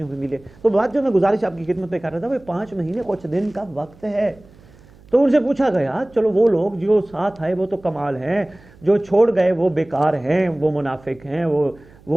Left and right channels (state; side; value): noise; right; hum, 25 dB below the sound